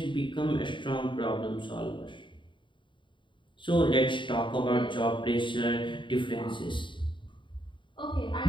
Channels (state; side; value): late; right; 0.23 ms